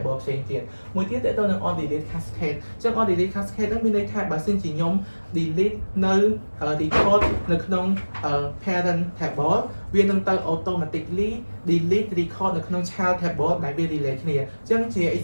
ផ្សេងទៀតមួយទៀតទៅនឹង on delete cascade អញ្ចឹង on delete cascade ហ្នឹងមានន័យថាបើសិនជាខ្ញុំ delete នៅ record នៅក្នុង parent table វានឹងទៅ automatically delete record នៅក្នុង child table ដែលវា relate គ្នាអញ្ចឹងជា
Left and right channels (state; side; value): inverted; both; correlation -1.00